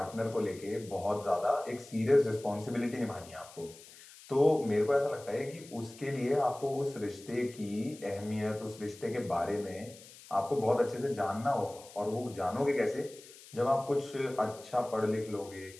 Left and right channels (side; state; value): left; noise; hiss, 19 dB below the sound